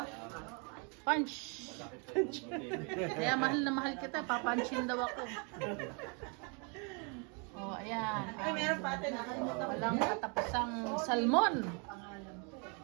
punch. Kaya mahal na mahal kita, papanchin daw ako. Oh, ayan. Ay, meron pa ate. Nakalimutan ko. Walang katapusang salmon.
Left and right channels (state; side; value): quieter; left; 35.2 dB